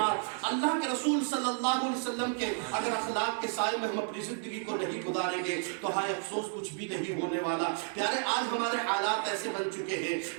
اللہ کے رسول صلی اللہ علیہ وسلم کے اگر اخلاق کے سائے میں ہم اپنی زندگی کو نہیں گزاریں گے تو ہائے افسوس کچھ بھی نہیں ہونے والا. پیارے آج ہمارے حالات ایسے بن چکے ہیں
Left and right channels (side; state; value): left; silent; 56 dB below the other